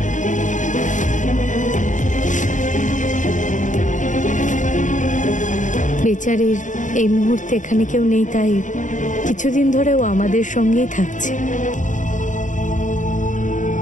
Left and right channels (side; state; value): right; late; 0.36 ms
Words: বেচারির এই মুহূর্তে এখানে কেউ নেই, তাই কিছুদিন ধরে ও আমাদের সঙ্গেই থাকছে।